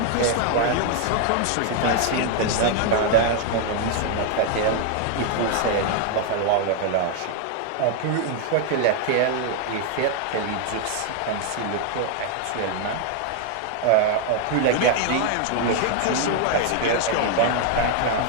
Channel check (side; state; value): both; different; correlation 0.00